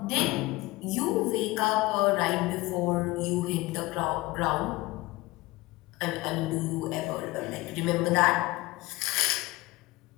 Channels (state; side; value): quieter; right; 20.5 dB